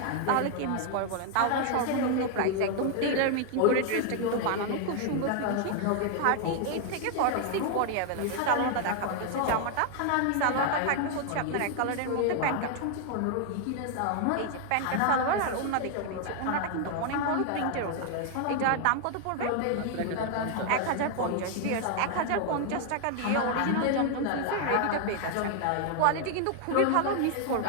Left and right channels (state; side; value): different; both; correlation 0.00